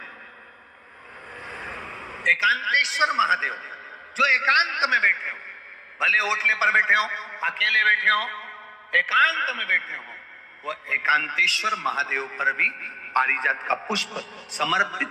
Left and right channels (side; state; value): both; identical; correlation 1.00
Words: एकांतेश्वर महादेव जो एकांत में बैठे हो, भले ओटले पर बैठे हो, अकेले बैठे हो, एकांत में बैठे हो, वो एकांतेश्वर महादेव पर भी पारिजात का पुष्प